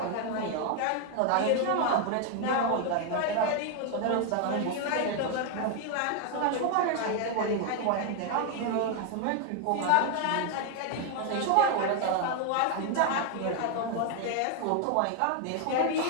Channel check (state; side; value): different; both; correlation 0.01